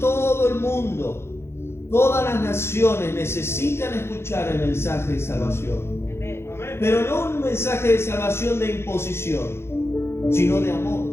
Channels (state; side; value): late; right; 0.12 ms